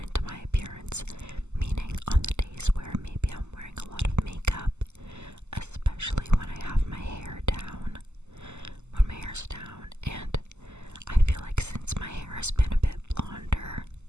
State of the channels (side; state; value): left; late; 0.83 ms